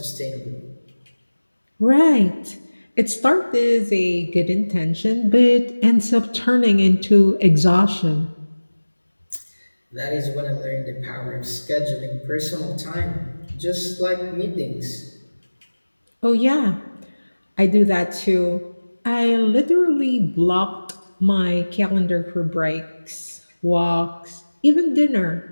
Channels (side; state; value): both; inverted; correlation -1.00